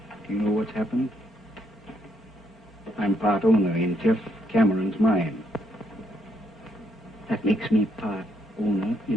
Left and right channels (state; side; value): normal; both; correlation 0.73